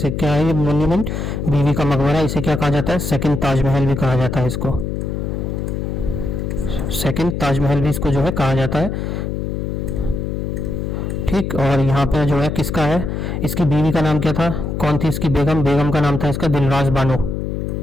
क्या है ये मॉन्यूमेंट, बीवी का मकबरा, इसे क्या कहा जाता है, सेकंड ताजमहल भी कहा जाता है इसको, सेकंड ताजमहल भी इसको जो है कहा जाता है। ठीक, और यहाँ पे जो है किसका है, इसकी बीवी का नाम क्या था, कौन थी इसकी बेगम, बेगम का नाम था इसका दिलरास बानो,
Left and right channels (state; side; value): noise; left; hum, 3 dB below the sound